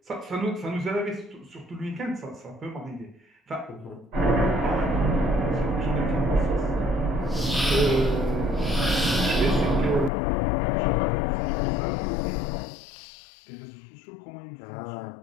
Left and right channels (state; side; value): drops out; right; at 10.1 s